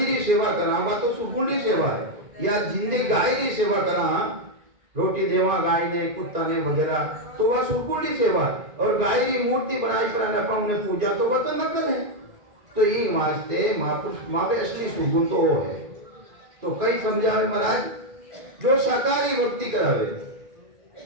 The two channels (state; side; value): late; left; 2.4 ms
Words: की सेवा करा वह तो सुरगुण की सेवा है। या जिंदे गाय की सेवा करा, रोटी देवा गाय ने, कुत्ता ने वगैरह, तो वह सुरगुण की सेवा। और गाय की मूर्ति बनाई पर उन्हें पूजा, तो वह तो नकल है। तो ये वास्ते महापुरुष मावे असली सुगुण तो वो है। तो कई समझावे महाराज जो साकारी भक्ति करावे।